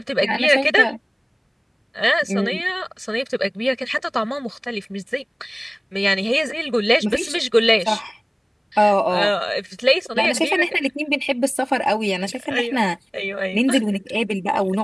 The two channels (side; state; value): both; identical; correlation 1.00